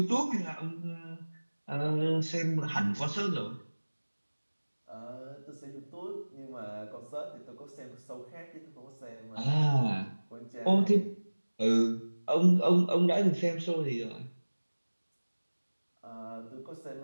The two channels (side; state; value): both; inverted; correlation -1.00